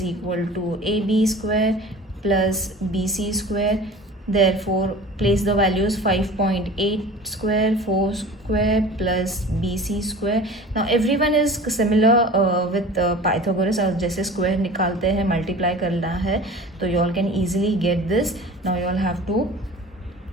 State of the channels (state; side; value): normal; both; correlation 0.40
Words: equal to AB square plus BC square. Therefore place the values 5.8 square, 4 square plus BC square. Now everyone is similar with Pythagoras. और जैसे square निकालते हैं multiply करना है तो you all can easily get this. Now you all have to